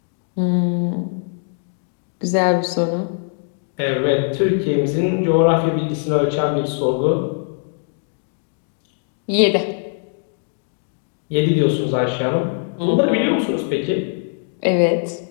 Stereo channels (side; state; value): right; silent; digital silence